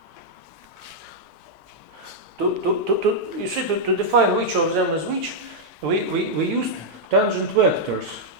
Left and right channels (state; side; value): normal; both; correlation -0.04